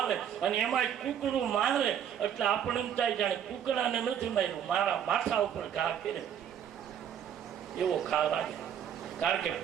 અને એમાં કુકડું મારે એટલે આપણે એમ થાય જાણે કુકડાને નથી માર્યું, મારા માથા ઉપર ઘા કરે એવો ખા લાગે. કારણ કે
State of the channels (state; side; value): quieter; left; 9.1 dB